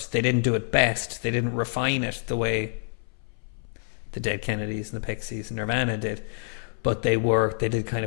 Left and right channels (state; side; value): silent; right; 60 dB below the other